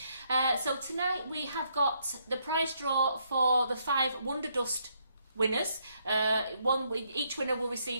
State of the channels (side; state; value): both; inverted; correlation -0.74